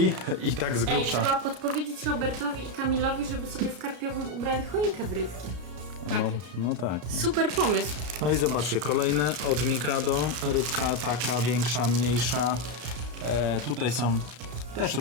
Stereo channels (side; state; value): left; late; 33 ms